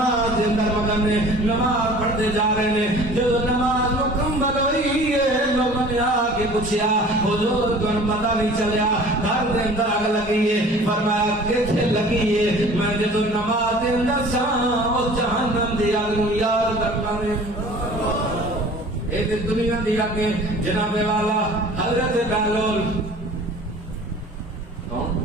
دے اندر مگن نے نماز پڑھدے جا رہے نے جدوں نماز مکمل ہوئی ہے لوگوں نے آ کے پوچھیا حضور تمہیں پتہ نہیں چلیا گھر دے اندر آگ لگی ہے فرمایا کتھے لگی ہے میں جدو نماز دے اندر سا اس جہنم دی آگ نوں یاد کرنا نے ایک دنیا دی آگ جناب والا حضرت بہلول کون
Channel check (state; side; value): normal; both; correlation 0.46